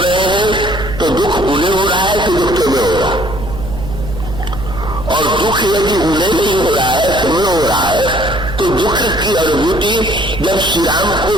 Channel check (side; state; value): right; noise; hum, 9 dB below the sound